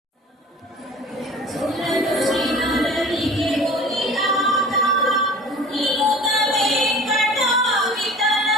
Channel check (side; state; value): both; normal; correlation 0.42